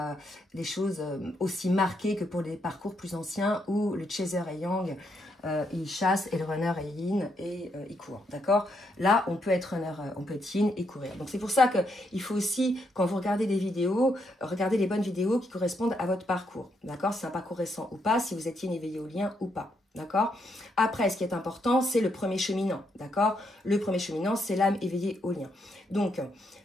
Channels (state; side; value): normal; both; correlation 0.77